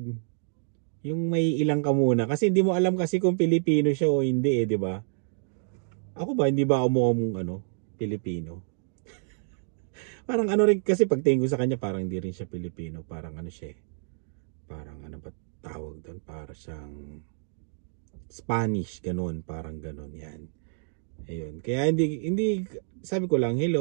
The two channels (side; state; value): left; silent; digital silence